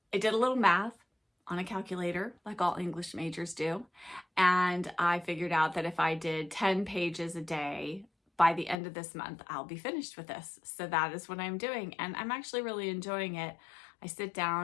I did a little math on a calculator, like all English majors do. And I figured out that if I did 10 pages a day, by the end of this month, I'll be finished with this. So that is what I'm doing. And I'm actually really enjoying it. I sit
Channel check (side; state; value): right; drops out; at 8.8 s